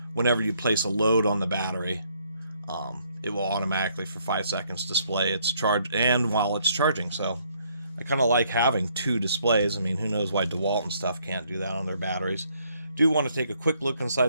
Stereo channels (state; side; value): inverted; both; correlation -0.69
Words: whenever you place a load on the battery, it will automatically for 5 seconds display its charge and while it's charging. So I kind of like having two displays. I mean, who knows why DeWalt and stuff can't do that on their batteries. Do want to take a quick look